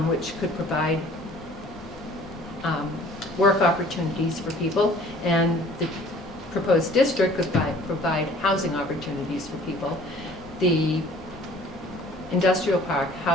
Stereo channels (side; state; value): both; normal; correlation 0.52